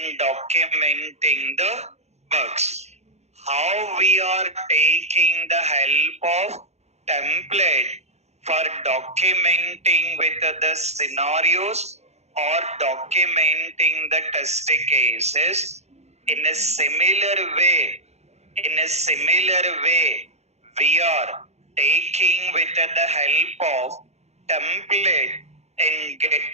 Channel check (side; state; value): left; late; 0.32 ms